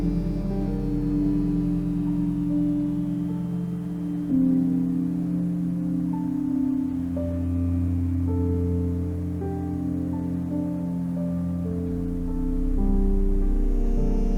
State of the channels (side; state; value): both; identical; correlation 1.00